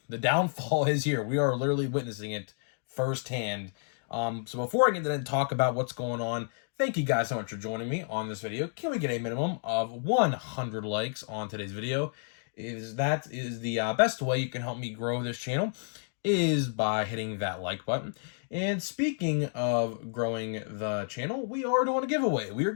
the downfall is here. We are literally witnessing it firsthand. So before I get into talk about what's going on, thank you guys so much for joining me on this video. Can we get a minimum of 100 likes on today's video? That is the best way you can help me grow this channel is by hitting that like button. And speaking of growing the channel, we are doing a giveaway. We are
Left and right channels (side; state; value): right; silent; digital silence